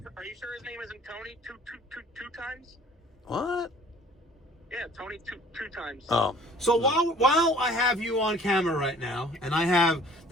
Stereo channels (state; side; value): normal; both; correlation 0.52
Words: are you sure his name isn't Tony two times? What? Yeah, Tony two times. Oh, so while I have you on camera right now, and I have